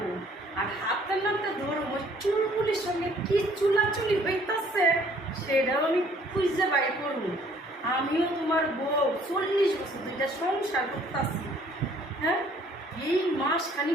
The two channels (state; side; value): normal; both; correlation 0.59